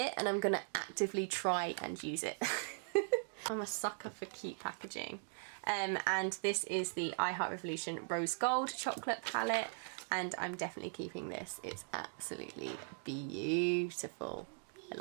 and I'm going to actively try and use it. I'm a sucker for cute packaging. And this is the I Heart Revolution Rose Gold Chocolate palette, and I'm definitely keeping this. It's absolutely beautiful. I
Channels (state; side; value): silent; left; digital silence